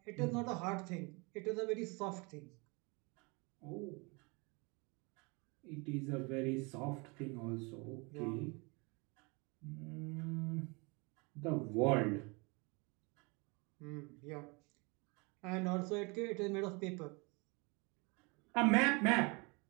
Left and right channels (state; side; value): quieter; left; 28.9 dB